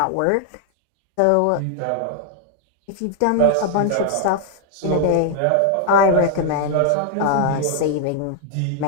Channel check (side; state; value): both; different; correlation 0.00